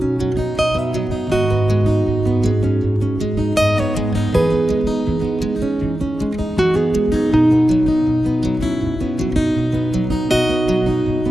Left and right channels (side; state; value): both; normal; correlation 0.91